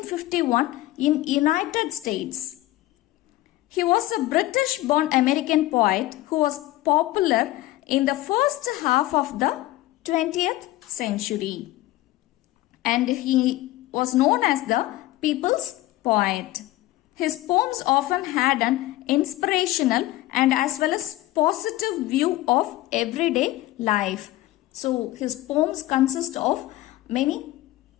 in United States. He was a British-born American poet who was popular in the first half of the 20th century, and he was known as the people's poet. His poems often had an inspirational and as well as positive view of everyday life. So his poems consist of many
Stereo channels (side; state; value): right; quieter; 16.9 dB